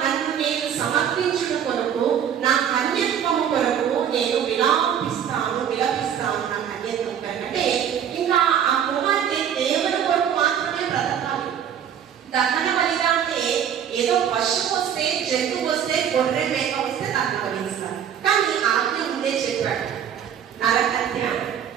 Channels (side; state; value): left; quieter; 8.9 dB